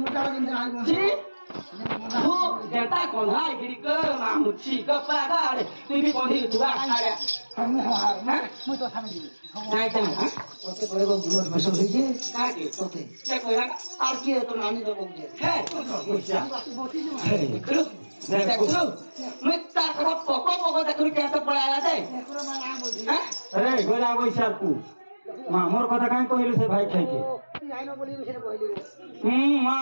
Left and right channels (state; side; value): inverted; both; correlation -1.00